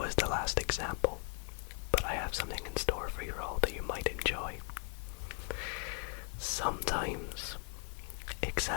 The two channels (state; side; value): quieter; right; 38.9 dB